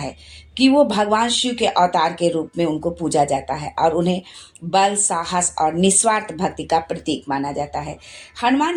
कि वो भगवान शिव के अवतार के रूप में उनको पूजा जाता है और उन्हें बल, साहस और निस्वार्थ भक्ति का प्रतीक माना जाता है। हनुमान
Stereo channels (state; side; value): identical; both; correlation 1.00